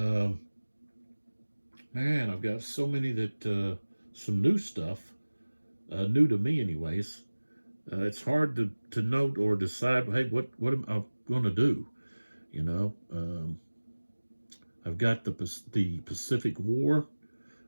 I've got so many that some new stuff, new to me anyways. It's hard to note or decide, hey, what am I going to do? You know, I've got the Pacific War.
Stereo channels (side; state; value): both; inverted; correlation -1.00